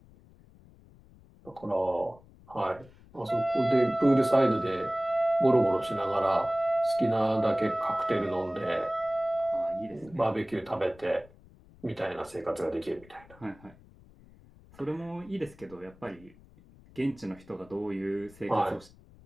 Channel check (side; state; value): left; noise; rumble, 25 dB below the sound